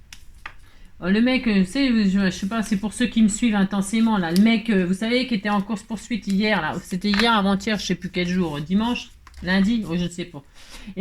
Le mec, je sais pas, c'est pour ceux qui me suivent intensément, là. Le mec, vous savez, qui était en course-poursuite hier, là. C'était hier, avant-hier, je sais plus quel jour. Dimanche? Lundi? Oh, je ne sais pas.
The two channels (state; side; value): identical; both; correlation 1.00